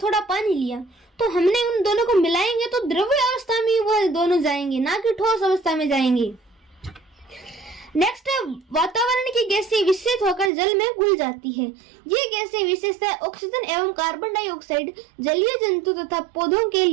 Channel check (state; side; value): drops out; left; at 10.5 s